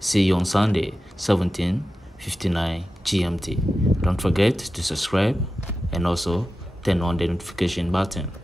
you on Sunday, 17:59 GMT. Don't forget to subscribe and also turn on the notification button.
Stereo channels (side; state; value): both; normal; correlation 0.93